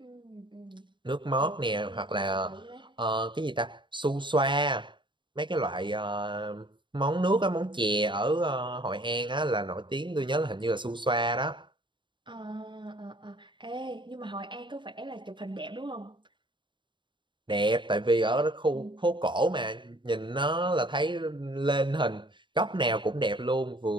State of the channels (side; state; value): left; late; 0.23 ms